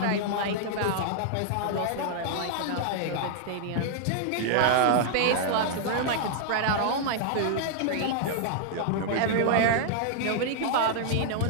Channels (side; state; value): both; different; correlation -0.01